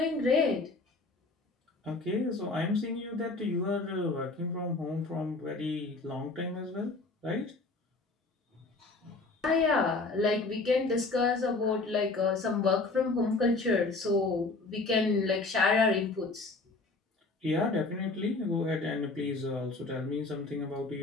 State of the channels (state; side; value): quieter; right; 3.5 dB